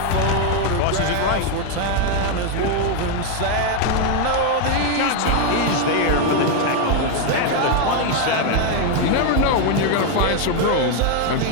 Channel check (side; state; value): both; different; correlation 0.01